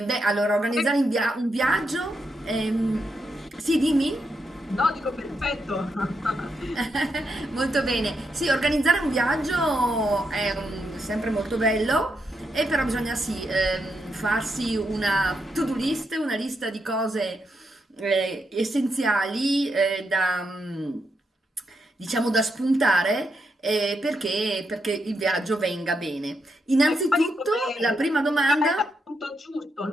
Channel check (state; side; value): normal; both; correlation 0.82